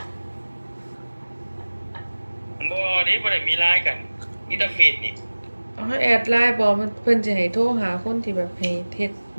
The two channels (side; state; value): both; inverted; correlation -1.00